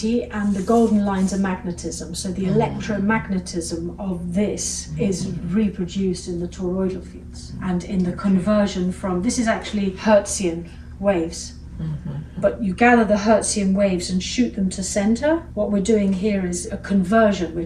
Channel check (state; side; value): identical; both; correlation 1.00